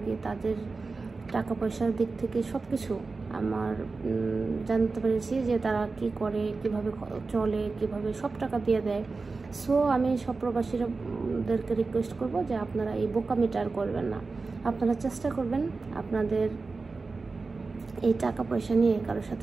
কি তাদের টাকা পয়সার দিক থেকে সব কিছু আমার জানতে পেরেছি যে তারা কি করে, কিভাবে চলে, কিভাবে সব টাকা দিয়ে দেয়। সো আমি সব প্রবাসীদেরকে রিকোয়েস্ট করব যে আপনারা এই বোকামিটা আর করবেন না। আপনারা চেষ্টা করবেন আপনাদের এই টাকা পয়সা নিয়ে কারোর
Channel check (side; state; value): left; quieter; 4.0 dB